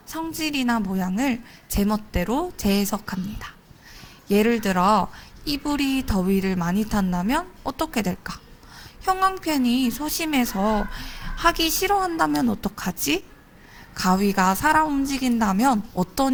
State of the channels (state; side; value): identical; both; correlation 1.00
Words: 성질이나 모양을 제 멋대로 재해석합니다. 예를 들어 이불이 더위를 많이 탄다면 어떻게 될까? 형광펜이 소심해서 하기 싫어한다면 어떡하지? 가위가 살아 움직인다면